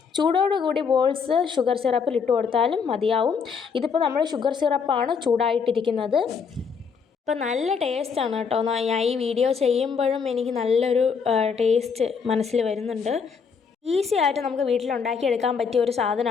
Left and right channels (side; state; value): right; quieter; 6.0 dB